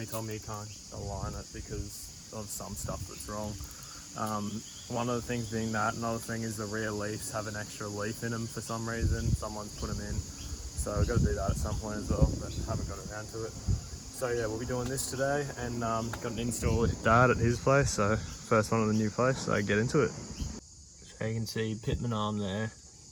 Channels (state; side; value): identical; both; correlation 1.00